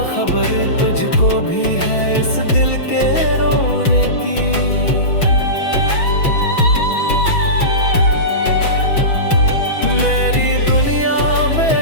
खबर तुझको भी है इस दिल के रोने की। मेरी दुनिया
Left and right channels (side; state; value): right; late; 6.2 ms